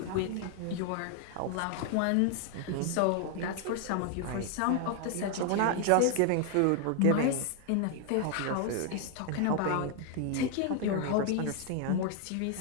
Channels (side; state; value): both; different; correlation 0.00